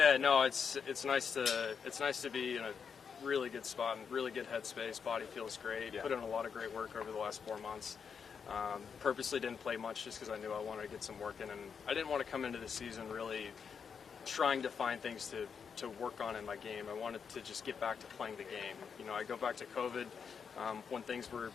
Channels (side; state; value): right; quieter; 6.5 dB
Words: no, it's nice to be in a really good spot and really good headspace. Body feels great. Yeah. Put in a lot of great work over the last 4 months. Purposely didn't play much just because I knew I wanted to get some work in, and I didn't want to come into the season really trying to find things to work on in my game. I wanted to just get back to playing the game. You know, I go back to COVID when things were